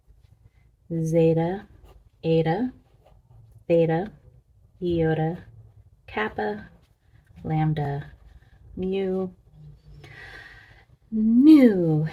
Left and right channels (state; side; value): identical; both; correlation 1.00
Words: zeta, eta, theta, iota, kappa, lambda, mu, nu,